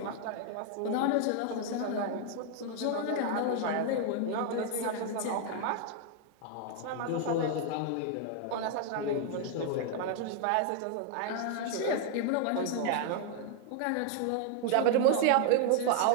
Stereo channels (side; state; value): both; different; correlation 0.00